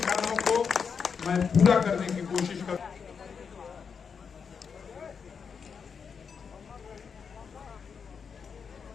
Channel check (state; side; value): quieter; right; 6.2 dB